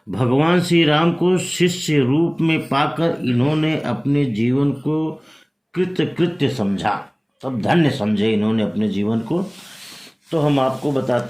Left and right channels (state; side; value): identical; both; correlation 1.00